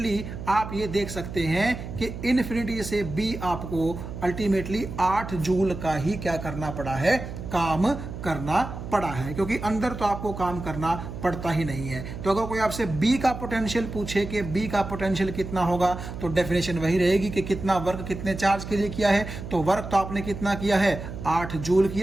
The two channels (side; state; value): right; noise; hum, 9 dB below the sound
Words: आप ये देख सकते हैं कि इन्फिनिटी से बी आपको अल्टीमेटली 8 जूल का ही क्या करना पड़ा है, काम करना पड़ा है, क्योंकि अंदर तो आपको काम करना पड़ता ही नहीं है। तो अगर कोई आपसे बी का पोटेंशियल पूछे कि बी का पोटेंशियल कितना होगा, तो डेफिनेशन वही रहेगी कि कितना वर्क कितने चार्ज के लिए किया है। तो वर्क तो आपने कितना किया है, 8 जूल